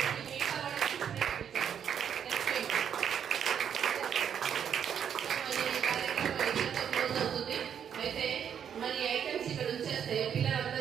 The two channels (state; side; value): quieter; left; 8.4 dB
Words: అయితే మరి ఐటమ్స్ ఇక్కడ ఉంచేస్తే